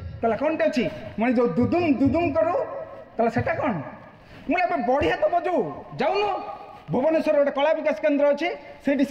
कौन टे अच्छी मैं जो दुदुम दुदुम करू कहला सेटा कौन मुझे बढ़िया तो बजू जाऊन भुवनेश्वर गोटे कला विकास केन्द्र अच्छे से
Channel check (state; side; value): identical; both; correlation 1.00